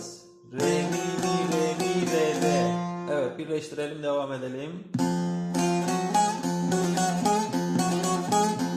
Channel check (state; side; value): identical; both; correlation 1.00